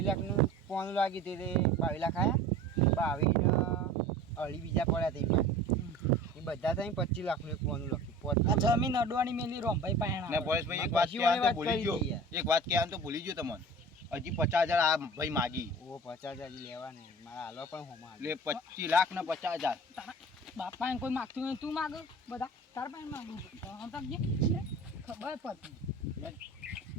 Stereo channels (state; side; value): normal; both; correlation 0.40